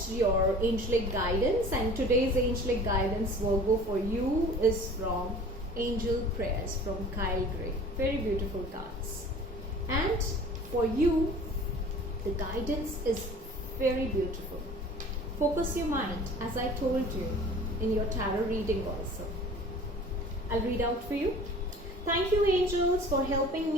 your angelic guidance, and today's angelic guidance, Virgo, for you is from Angel Prayers from Kyle Gray. Very beautiful cards. And for you, the guidance is very beautiful. Focus your mind, as I told you in your tarot reading also. I'll read out for you. Thank you, angels, for helping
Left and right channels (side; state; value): both; normal; correlation 0.45